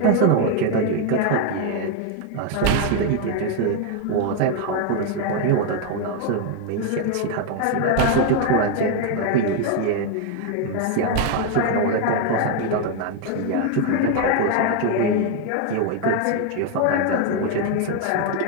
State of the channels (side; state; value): both; different; correlation 0.01